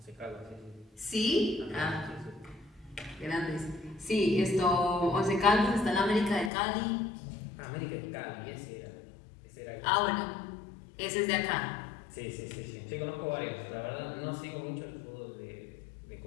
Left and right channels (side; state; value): right; drops out; at 6.5 s